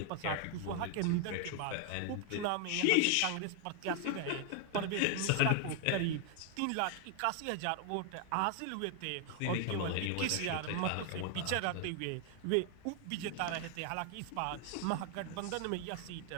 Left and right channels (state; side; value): different; both; correlation 0.00